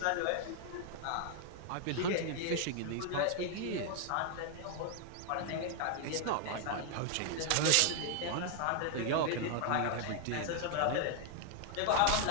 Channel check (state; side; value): different; both; correlation 0.00